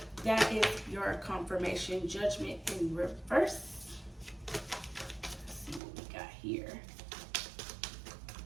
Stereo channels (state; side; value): drops out; left; at 5.8 s